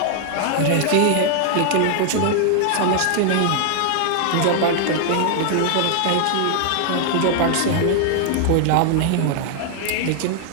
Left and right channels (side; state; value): both; different; correlation 0.00